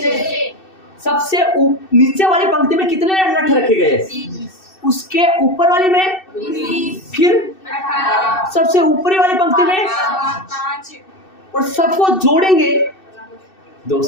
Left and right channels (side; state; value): right; late; 2.6 ms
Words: सबसे नीचे वाली पंक्ति में कितने लट्ठ रखे गए, उसके ऊपर वाली में, फिर सबसे ऊपरी वाली पंक्ति में, और सबको जोड़ेंगे